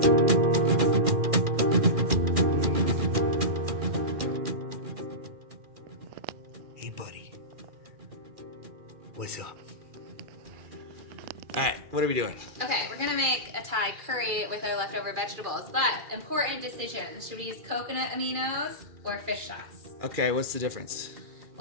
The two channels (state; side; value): late; left; 2.4 ms